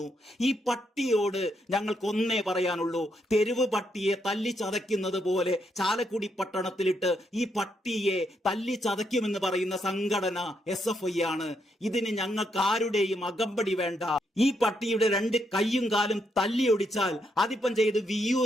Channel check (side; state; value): both; normal; correlation 0.78